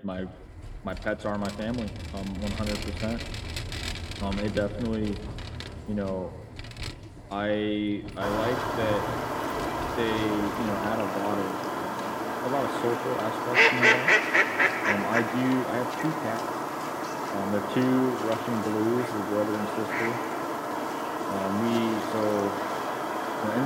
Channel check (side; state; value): both; identical; correlation 1.00